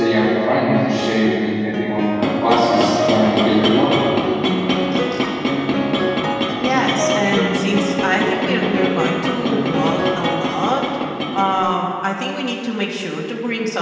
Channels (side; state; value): both; identical; correlation 1.00